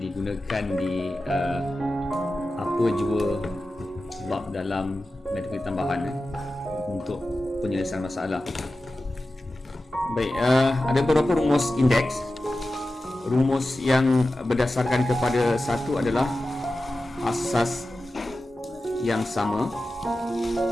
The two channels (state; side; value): normal; both; correlation 0.94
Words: di apa jua bab dalam matematik tambahan untuk penyelesaian masalah. Baik, ada beberapa rumus indeks. Rumus yang berdasarkan kepada satu adalah asas yang sama